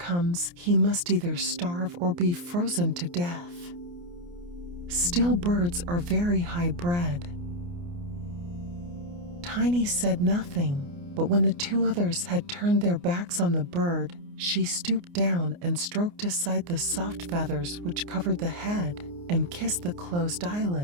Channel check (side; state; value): left; late; 29 ms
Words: he must either starve or be frozen to death. Still, birds are very high-bred." Tiny said nothing, but when the two others had turned their backs on the bird, she stooped down and stroked aside the soft feathers which covered the head and kissed the closed